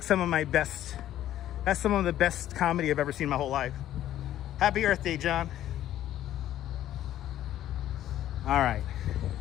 some of the best comedy I've ever seen in my whole life. Happy Earth Day, John. All right.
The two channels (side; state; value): right; quieter; 12.4 dB